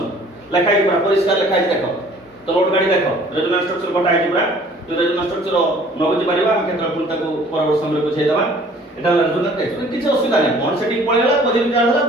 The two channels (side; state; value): both; normal; correlation 0.53